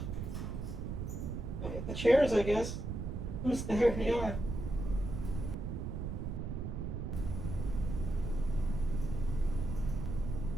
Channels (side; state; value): right; noise; rumble, 4 dB below the sound